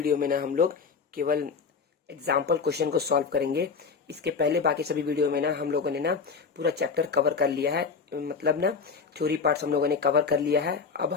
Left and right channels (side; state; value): right; quieter; 5.4 dB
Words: में ना हम लोग केवल एग्जाम्पल क्वेश्चन को सॉल्व करेंगे। इसके पहले बाकी सभी वीडियो में ना हम लोगों ने ना पूरा चैप्टर कवर कर लिया है, मतलब ना थ्योरी पार्ट्स हम लोगों ने कवर कर लिया है। अब